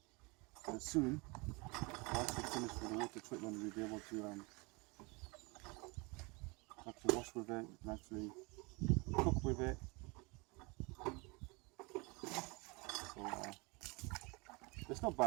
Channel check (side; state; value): left; quieter; 27.6 dB